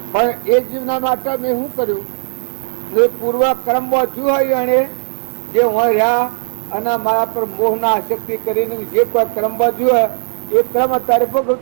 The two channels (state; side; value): silent; left; digital silence